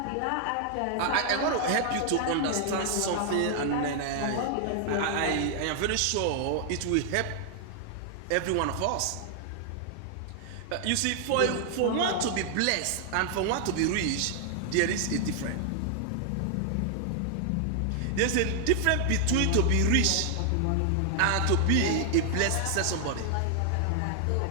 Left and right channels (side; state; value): both; different; correlation 0.00